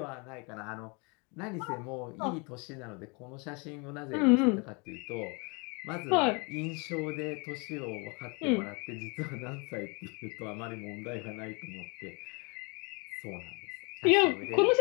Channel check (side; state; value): right; quieter; 31.2 dB